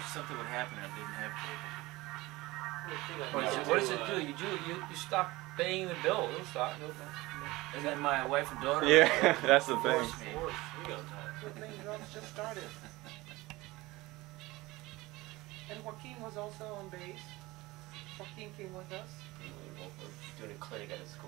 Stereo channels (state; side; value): quieter; left; 20.4 dB